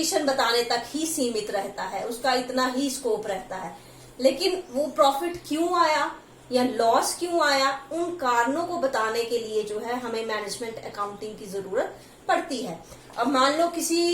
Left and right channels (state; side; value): identical; both; correlation 1.00